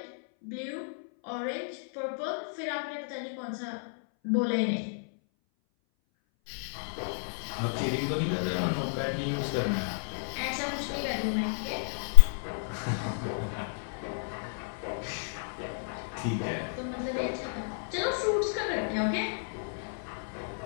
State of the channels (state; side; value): silent; right; 57 dB below the other